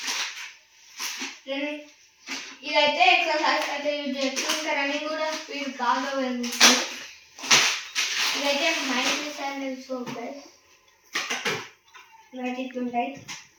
ఇదైతే ఎక్సర్సైజ్ అయితే యూజ్ చేయొచ్చు, ఇంకా రన్నింగ్ కూడా స్పీడ్ బాగా పెరుగుతుంది. ఇదైతే మైక్రో శాండల్ సోప్ గైస్, ఇవైతే ఇట్లుంటాయి.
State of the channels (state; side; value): identical; both; correlation 1.00